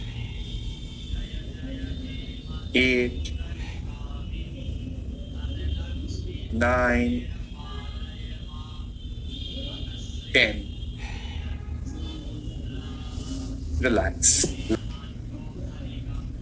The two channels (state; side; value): identical; both; correlation 1.00